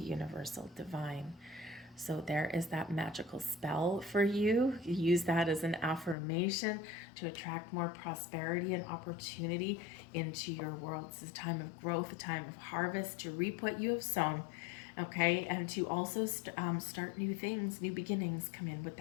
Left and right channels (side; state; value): right; drops out; at 6.2 s